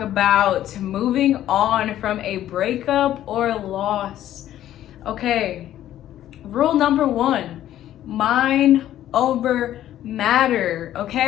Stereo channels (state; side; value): quieter; right; 12.4 dB